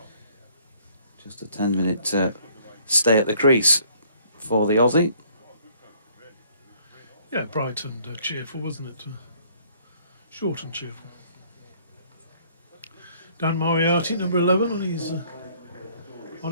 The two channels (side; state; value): both; inverted; correlation -0.61